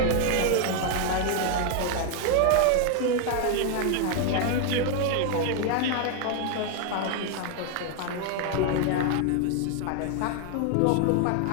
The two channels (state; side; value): different; both; correlation 0.00